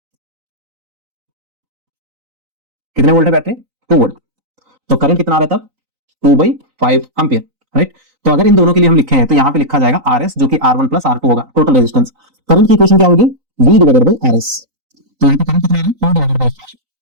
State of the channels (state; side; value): late; left; 3.9 ms